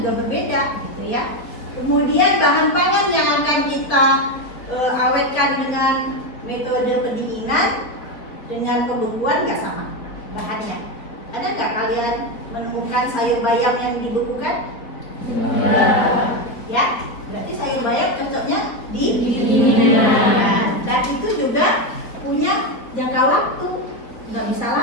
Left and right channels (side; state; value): right; late; 4.1 ms